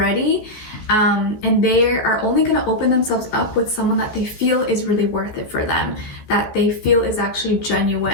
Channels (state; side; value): late; right; 14 ms